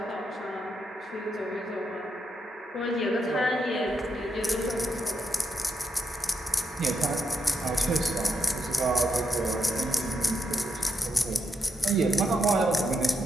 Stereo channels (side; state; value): both; normal; correlation 0.82